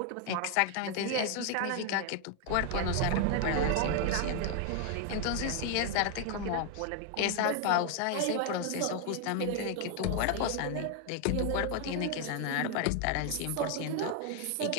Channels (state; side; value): different; both; correlation 0.00